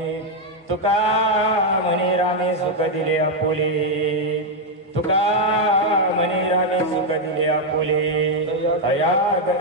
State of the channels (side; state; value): both; normal; correlation 0.01